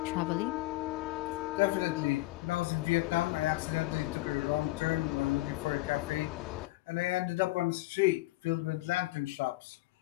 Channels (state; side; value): quieter; right; 19.1 dB